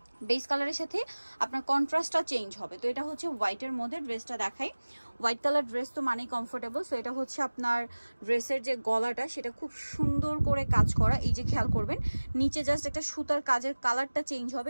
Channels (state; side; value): inverted; both; correlation -1.00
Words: বেস কালারের সাথে আপনার কন্ট্রাস্টটা চেঞ্জ হবে। তো এটা হচ্ছে হোয়াইটের মধ্যে ড্রেসটা দেখাই। হোয়াইট কালার ড্রেস তো মানেই কমফোর্টেবল। সো এটা হচ্ছে আপনার ড্রেসের যে গলাটা সেটা খুব সুন্দর করে কাজ করা, এই যে খেয়াল করবেন নিচে জাস্ট একটা সুতার কাজের কালারটা চেঞ্জ হবে,